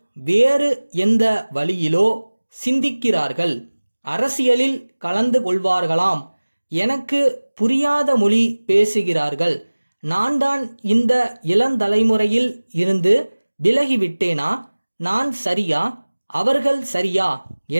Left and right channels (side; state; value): both; inverted; correlation -1.00